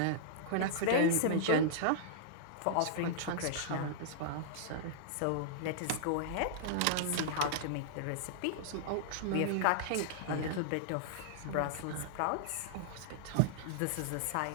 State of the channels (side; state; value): both; different; correlation -0.01